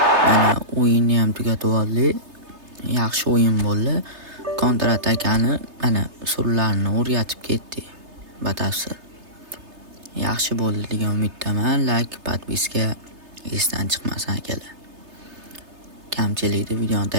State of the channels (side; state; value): left; late; 3.3 ms